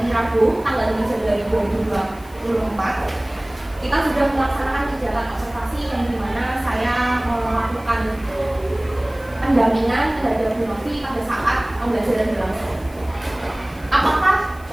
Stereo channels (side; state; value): left; noise; hiss, 25 dB below the sound